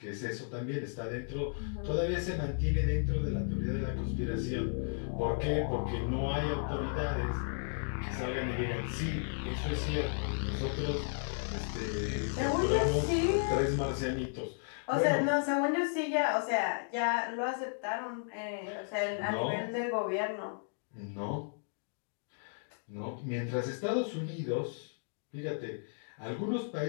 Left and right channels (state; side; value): silent; right; digital silence